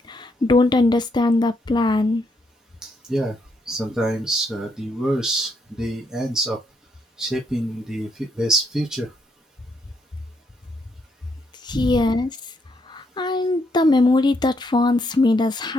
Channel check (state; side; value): normal; both; correlation 0.76